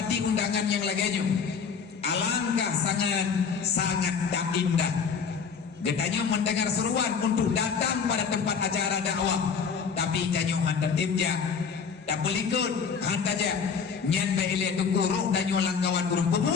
undangan yang lainnya, alangkah sangat tak indah. Getanya mendengar seruan untuk datang pada tempat acara dakwah, tapi janyo hantar timja, tak belikut hantaja, nyan beile tukurung danyo langkawan burung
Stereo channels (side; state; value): right; quieter; 6.1 dB